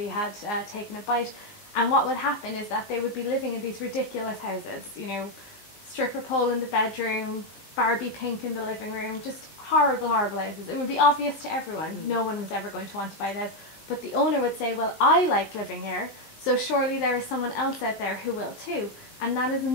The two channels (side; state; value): right; late; 19 ms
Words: had taken a bite. And what would happen is that they would be living in these ridiculous houses, you know, stripper pole in the bedroom, Barbie pink in the living room, just horrible, horrible houses. It would be obvious to everyone. No one was ever going to want to buy the house. But the owner would say, well, I like living here, so surely there is someone else out there who will too. And that is